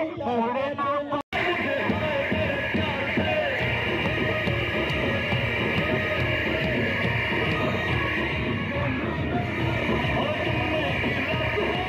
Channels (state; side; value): identical; both; correlation 1.00